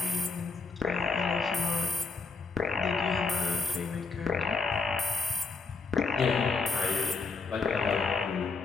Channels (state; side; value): quieter; right; 4.2 dB